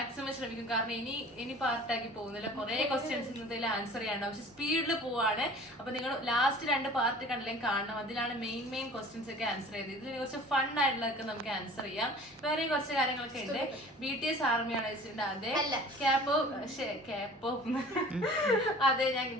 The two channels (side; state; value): both; normal; correlation 0.45